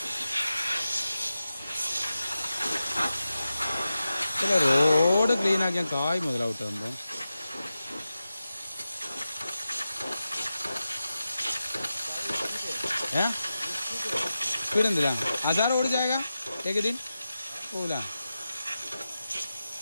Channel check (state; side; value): inverted; both; correlation -0.92